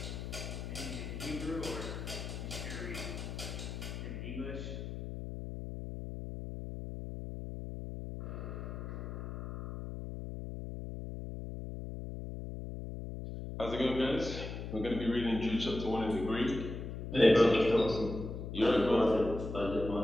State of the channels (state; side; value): noise; left; hum, 7 dB below the sound